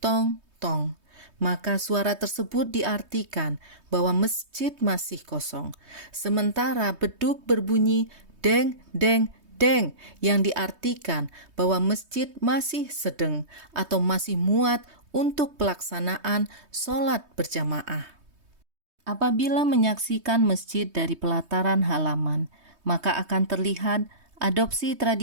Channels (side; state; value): left; late; 3.2 ms